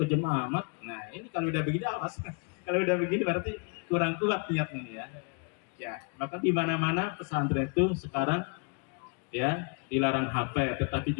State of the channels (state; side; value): quieter; right; 35.9 dB